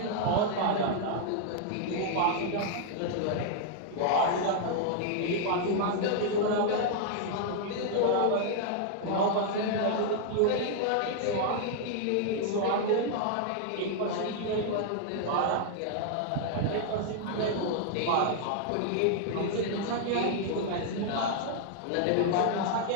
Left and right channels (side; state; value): both; different; correlation -0.01